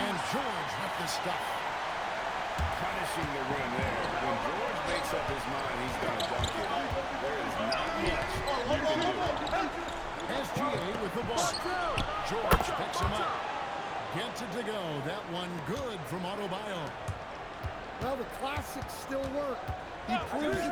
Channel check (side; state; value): both; identical; correlation 1.00